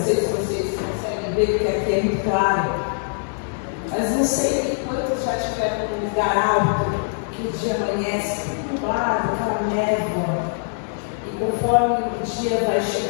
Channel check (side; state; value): right; silent; digital silence